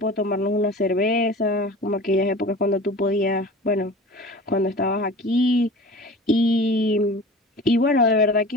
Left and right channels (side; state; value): both; normal; correlation 0.38